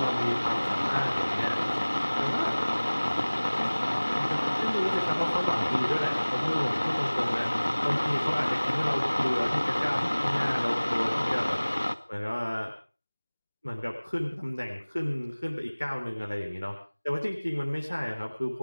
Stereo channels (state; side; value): inverted; both; correlation -1.00